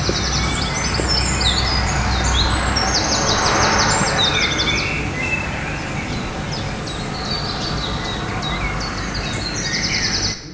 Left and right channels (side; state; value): both; identical; correlation 1.00